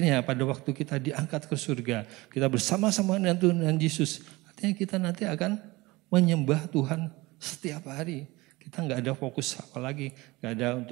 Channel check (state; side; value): quieter; left; 21.7 dB